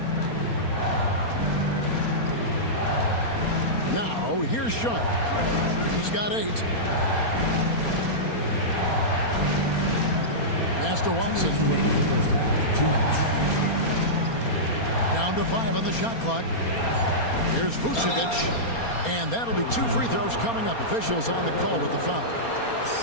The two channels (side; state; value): right; late; 4.3 ms